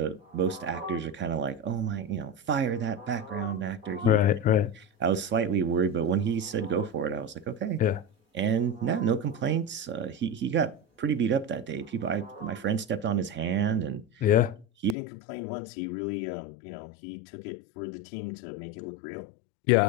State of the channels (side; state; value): right; drops out; at 15.0 s